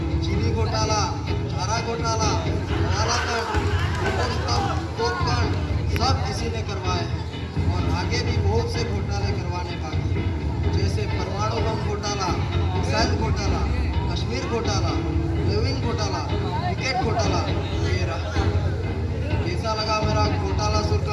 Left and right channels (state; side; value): identical; both; correlation 1.00